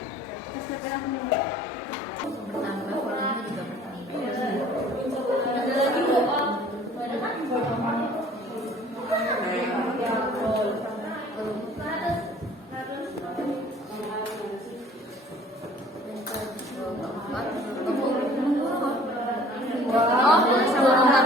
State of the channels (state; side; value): normal; both; correlation 0.51